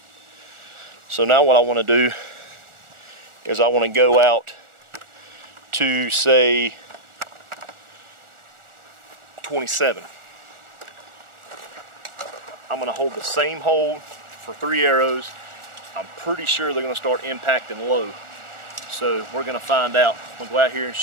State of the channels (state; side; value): late; left; 1.4 ms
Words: So now what I want to do is I want to go out to, say, 27. I'm going to hold the same hold for 3 arrows. I'm pretty sure they're going to start impacting low. So we're going to find out. We'll go out here and